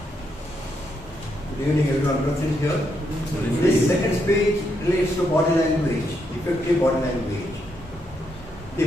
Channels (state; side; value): normal; both; correlation 0.78